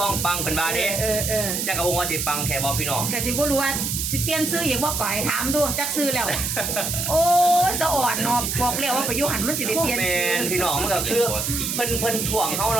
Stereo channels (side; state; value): right; noise; hiss, 1 dB below the sound